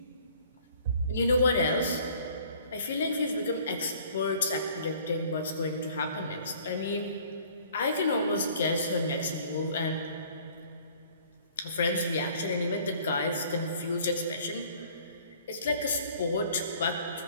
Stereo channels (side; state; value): both; inverted; correlation -0.54